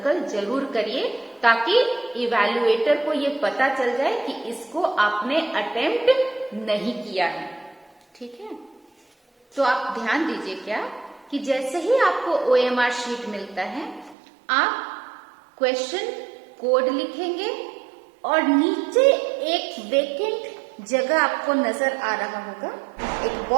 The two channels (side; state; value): left; drops out; at 14.2 s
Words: जरूर करिए, ताकि इवैल्यूएटर को ये पता चल जाए कि इसको आपने अटेम्प्ट नहीं किया है, ठीक है। तो आप ध्यान दीजिए क्या कि जैसे ही आपको OMR शीट मिलता है, आप क्वेश्चन कोड लिखेंगे और नीचे एक वेकेंट जगह आपको नजर आ रहा होगा, एक